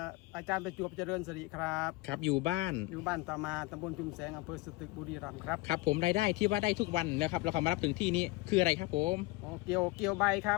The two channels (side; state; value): right; quieter; 21.1 dB